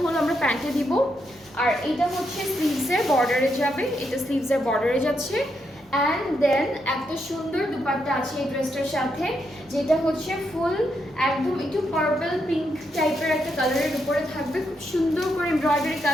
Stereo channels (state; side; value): normal; both; correlation 0.80